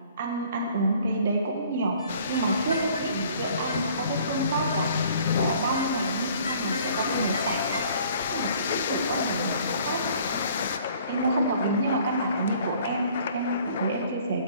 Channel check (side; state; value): both; inverted; correlation -0.55